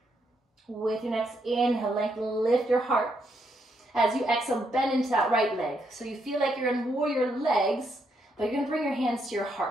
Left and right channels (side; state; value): both; normal; correlation 0.77